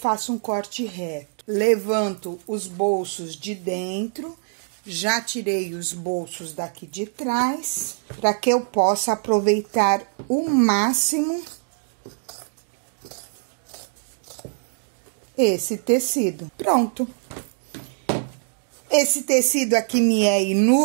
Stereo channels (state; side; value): silent; left; digital silence